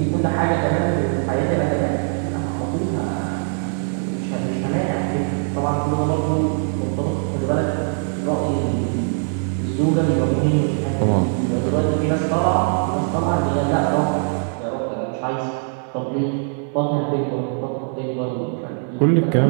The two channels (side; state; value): left; silent; 58 dB below the other